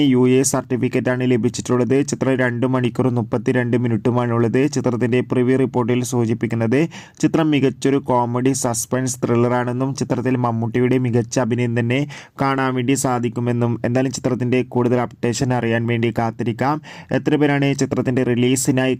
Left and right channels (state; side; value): identical; both; correlation 1.00